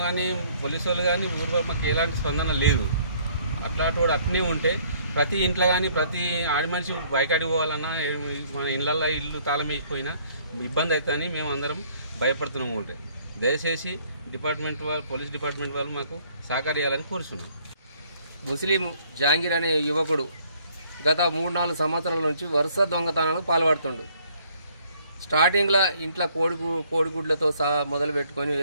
కానీ పోలీసు వాళ్ళు కానీ ఊరు మాకు ఎలాంటి స్పందన లేదు. అట్లాంటి వాడు అట్నే ఉంటే ప్రతి ఇంట్లో కానీ ప్రతి ఆడి మనిషి బయకాడికి పోవాలన్నా మన ఇళ్ళల్లో ఇల్లు తాళం వేసిపోయినా ఇబ్బంది అవుతుందని మేము అందరం భయపడుతున్నాము. ఉంటే దయచేసి డిపార్ట్మెంట్ వాళ్ళు, పోలీస్ డిపార్ట్మెంట్ వాళ్ళు మాకు సహకరించాలని కోరుతున్నాం. ముస్లిం జహాంగీర్ అనే యువకుడు గత 3-4 సంవత్సరాల నుంచి వరుస దొంగతనాలకు పాల్పడుతుండు. స్టార్టింగ్లో ఇంట్లో కోడిగుడ్లతో మొదలు పెట్టుకొని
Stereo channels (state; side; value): inverted; both; correlation -0.62